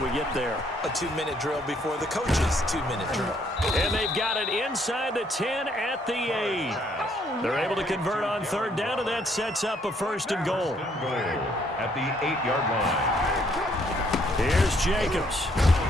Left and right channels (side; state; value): both; normal; correlation 0.68